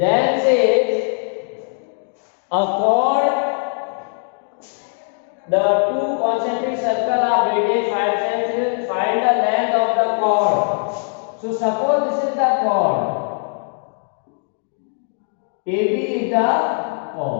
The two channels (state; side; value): silent; right; 60 dB below the other